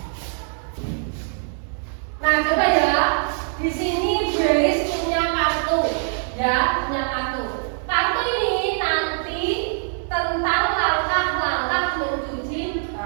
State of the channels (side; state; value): left; silent; 59 dB below the other